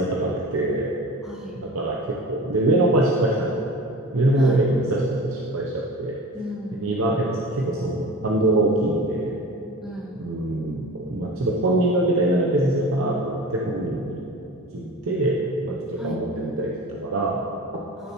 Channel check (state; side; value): normal; both; correlation 0.35